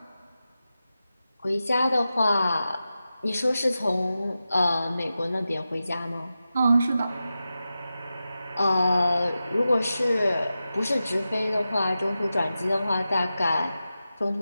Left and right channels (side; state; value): both; inverted; correlation -0.93